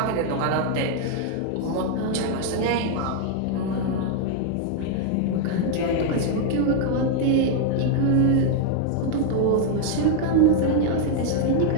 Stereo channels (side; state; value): both; different; correlation 0.00